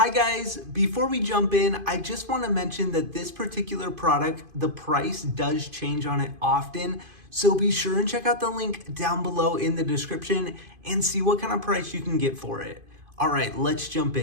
Hi guys, before we jump in, I just want to mention that this particular product, the price does change on it often. So be sure and check out the link down below in the description and see what kind of price you can get for it. All right, let's jump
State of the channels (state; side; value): late; left; 2.5 ms